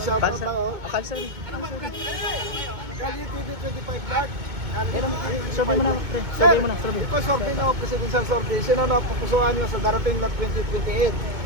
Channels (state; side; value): late; left; 2.2 ms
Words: Shoutout lang oh. Kalsari. Kali TV 25 Dark. Survey mo na, pre. Survey mo na, ito survey no, presidential survey. Sino na pupusuan nyo sa darating na 2028?